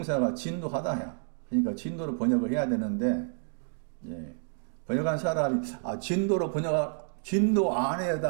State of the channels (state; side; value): silent; left; digital silence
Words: 진노하다야. 그러니까 진노로 번역을 해야 되는데 예. 번역한 사람이 진노